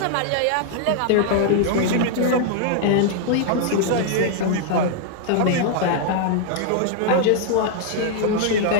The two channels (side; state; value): both; different; correlation -0.01